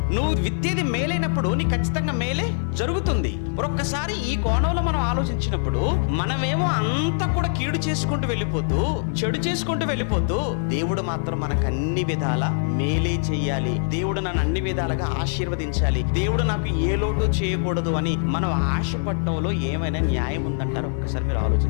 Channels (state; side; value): silent; right; digital silence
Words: నువ్వు విత్తేది మేలైనప్పుడు నీ ఖచ్చితంగా మేలే జరుగుతుంది. ఒక్కసారి ఈ కోణంలో మనం ఆలోచించినప్పుడు మనమేమో అంతా కూడా కీడు చేసుకుంటూ వెళ్ళిపోతూ చెడు చేసుకుంటూ వెళ్ళిపోతూ దేవుడు మాత్రం మనకు అన్ని విధాల మేలే చెయ్యాలి, దేవుడు నన్ను అన్ని విధాలుగా ఆశీర్వదించాలి, దేవుడు నాకు ఏ లోటు చేయకూడదు అని మనం ఆశపడటంలో ఏమైనా న్యాయం ఉందంటారు? ఒక్కసారి మీరు